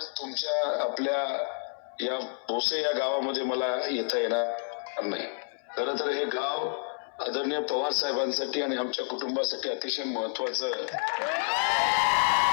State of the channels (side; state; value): right; silent; 58 dB below the other